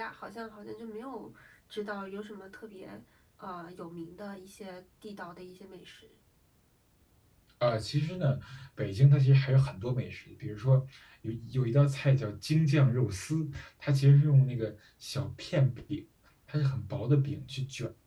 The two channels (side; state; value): both; identical; correlation 1.00